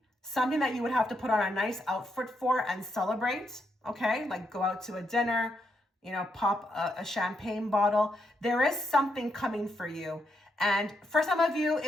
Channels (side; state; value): both; normal; correlation 0.80